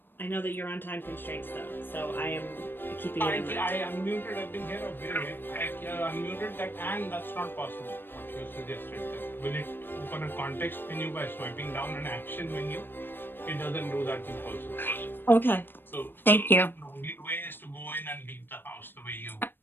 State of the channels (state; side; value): late; right; 0.097 ms